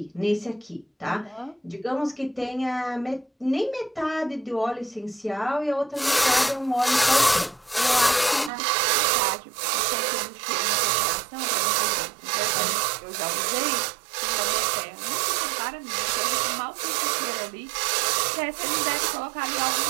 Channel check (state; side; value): drops out; left; at 8.5 s